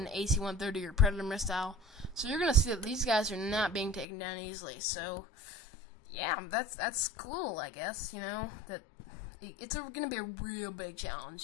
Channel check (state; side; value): drops out; right; at 4.0 s